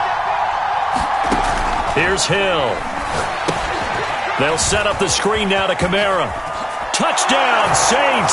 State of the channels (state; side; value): identical; both; correlation 1.00